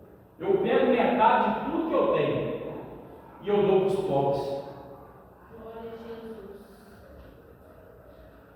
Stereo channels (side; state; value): both; identical; correlation 1.00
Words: eu pego metade de tudo que eu tenho e eu dou para os pobres. Glória a Jesus.